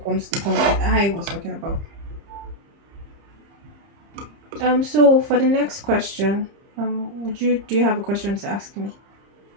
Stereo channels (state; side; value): late; left; 30 ms